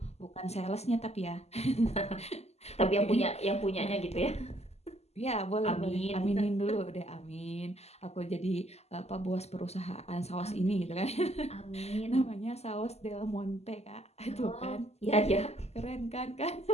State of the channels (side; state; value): right; late; 0.30 ms